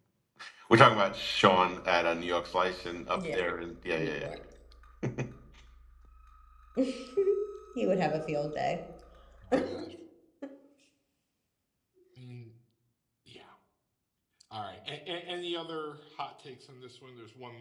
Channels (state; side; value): identical; both; correlation 1.00